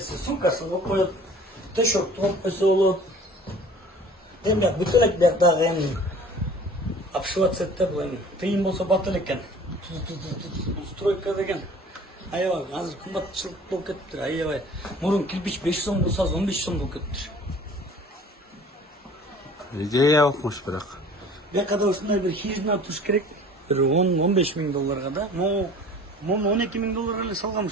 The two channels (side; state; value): both; normal; correlation 0.47